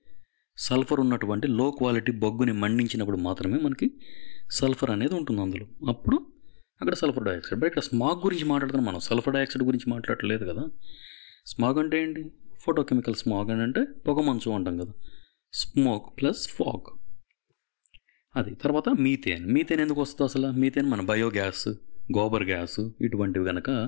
సల్ఫర్ ఉన్నటువంటి లో క్వాలిటీ బొగ్గుని మండించినప్పుడు మాత్రమే మనకి సల్ఫర్ అనేది ఉంటుంది అందులో. అప్పుడు అక్కడ సల్ఫర్ డైఆక్సైడ్. బట్ ఇక్కడ స్మాగ్ గురించి మాట్లాడుతున్నాం మనం, సల్ఫర్ డైఆక్సైడ్ గురించి మాట్లాడలేదు కదా. స్మాగ్ అంటే ఏంటి? ఫోటోకెమికల్ స్మాగ్ అని అంటే పొగమంచు అంటాం కదా. స్మోక్ ప్లస్ ఫాగ్ అది. తర్వాత మీథేన్. మీథేన్ ఎందుకు వస్తుంది అసలు? మీథేన్ మన బయోగ్యాస్, గోబర్ గ్యాస్ ఇటువంటివి కనుక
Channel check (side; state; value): right; silent; digital silence